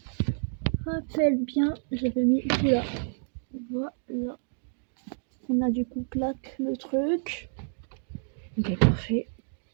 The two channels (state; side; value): silent; left; digital silence